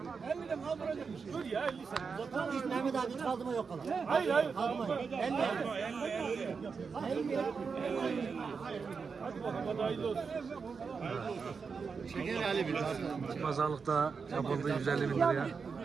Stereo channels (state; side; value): quieter; left; 5.4 dB